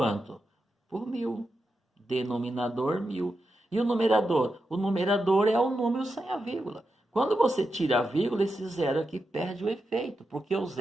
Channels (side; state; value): both; normal; correlation 0.88